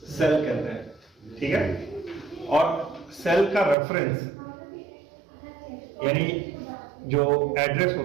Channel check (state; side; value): drops out; left; at 3.8 s